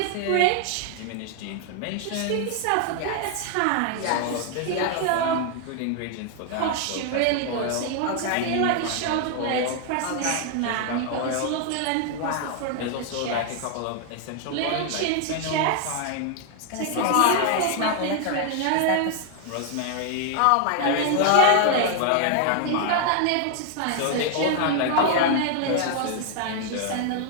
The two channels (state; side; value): different; both; correlation 0.00